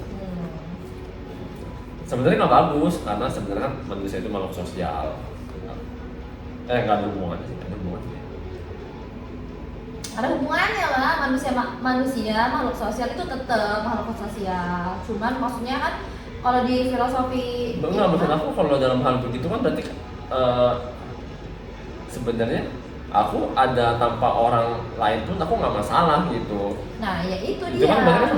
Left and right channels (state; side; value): identical; both; correlation 1.00